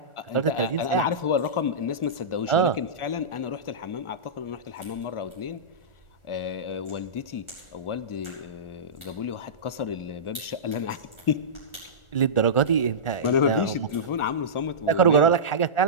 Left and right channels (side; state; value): right; late; 1.4 ms